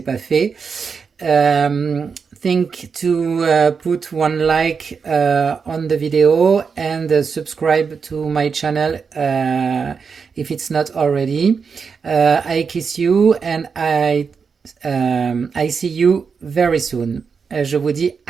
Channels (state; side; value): quieter; left; 5.7 dB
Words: pas fait. Think to put one like on the video and subscribe to my channel if it's not already. I kiss you and I see you very soon. Je vous dis